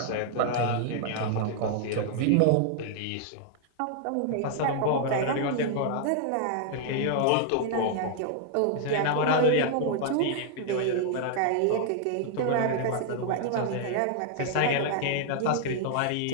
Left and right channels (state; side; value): different; both; correlation 0.00